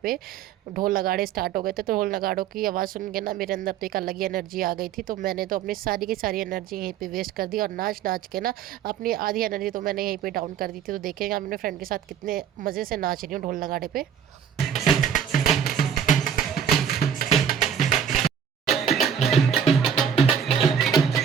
पे ढोल नगाड़े स्टार्ट हो गए थे। तो ढोल नगाड़ों की आवाज़ सुन के ना मेरे अंदर तो एक अलग ही एनर्जी आ गई थी। तो मैंने तो अपनी सारी की सारी एनर्जी यहीं पे वेस्ट कर दी और नाच नाच के ना अपनी आधी एनर्जी तो मैंने यहीं पे डाउन कर दी थी। तो देखेंगे मैं अपने फ्रेंड के साथ कितने मज़े से नाच रही हूँ ढोल नगाड़े पे।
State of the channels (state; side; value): quieter; left; 8.2 dB